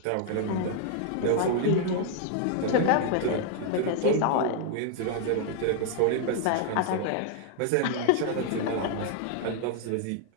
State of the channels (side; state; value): both; different; correlation 0.00